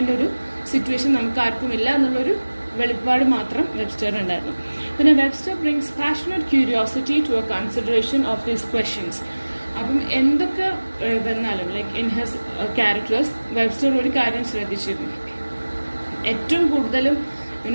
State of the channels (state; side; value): inverted; both; correlation -1.00